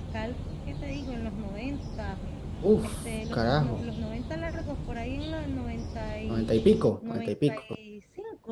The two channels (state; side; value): identical; both; correlation 1.00